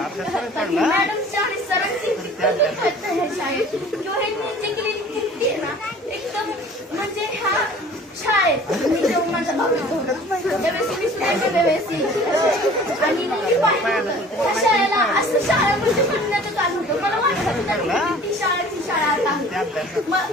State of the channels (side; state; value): both; normal; correlation 0.47